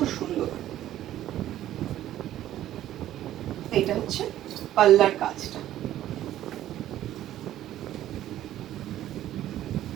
সুন্দর, এটা হচ্ছে পাল্লার কাজটা।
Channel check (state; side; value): quieter; left; 12.9 dB